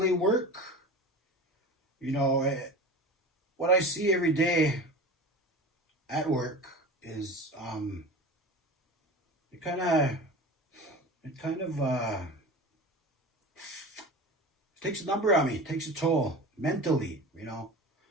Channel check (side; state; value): both; normal; correlation 0.33